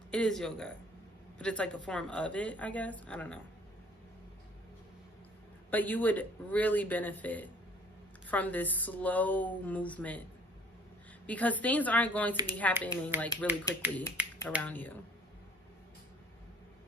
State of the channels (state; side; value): normal; both; correlation 0.55